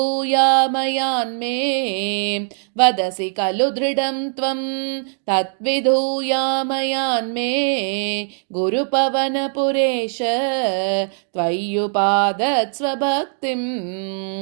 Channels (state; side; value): silent; left; 62 dB below the other